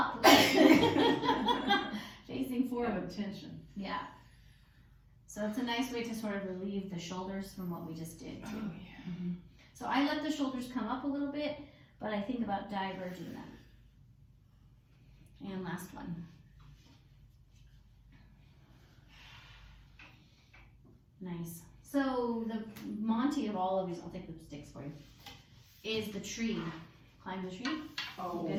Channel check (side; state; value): both; identical; correlation 1.00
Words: Facing forward. Tension. Yeah. So it's a nice way to sort of relieve the shoulders from what we just did too. So I let the shoulders come up a little bit, but I think about diverging them. And last one. Nice. So the Monty of all of these, I'll take the sticks for you, is the tree. Climb the tree. Oh, you